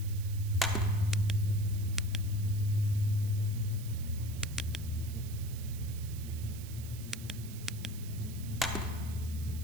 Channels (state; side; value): noise; right; hiss, 15 dB below the sound